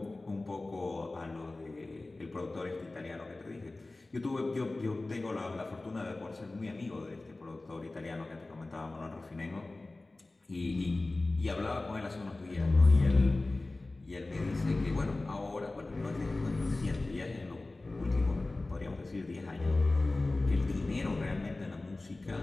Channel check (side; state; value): right; quieter; 3.1 dB